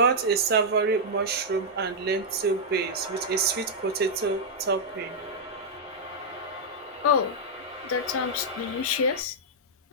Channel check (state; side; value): normal; both; correlation -0.05